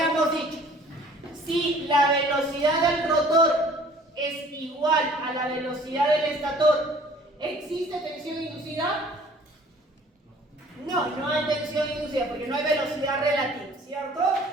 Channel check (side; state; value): both; normal; correlation 0.52